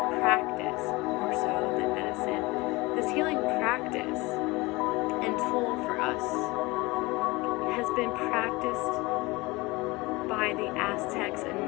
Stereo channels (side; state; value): right; quieter; 23.0 dB